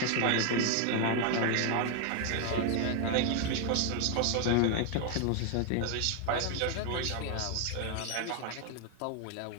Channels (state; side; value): different; both; correlation 0.01